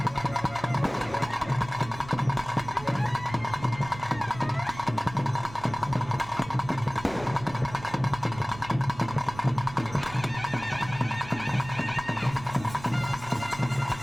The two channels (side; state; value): right; noise; rumble, 15 dB below the sound